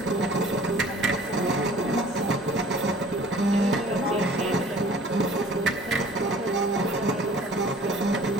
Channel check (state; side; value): normal; both; correlation 0.49